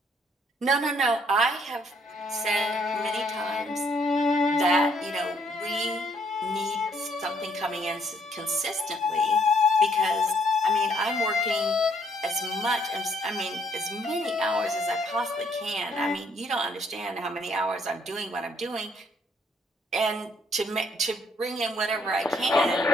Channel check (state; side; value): normal; both; correlation 0.67